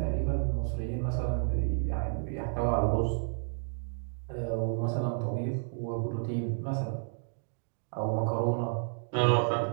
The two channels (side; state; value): left; silent; digital silence